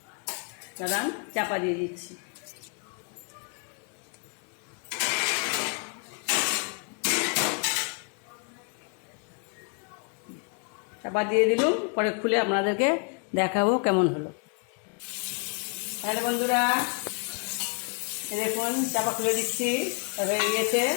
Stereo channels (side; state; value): right; quieter; 39.6 dB